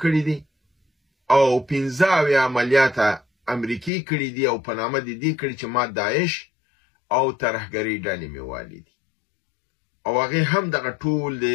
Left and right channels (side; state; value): right; drops out; at 3.9 s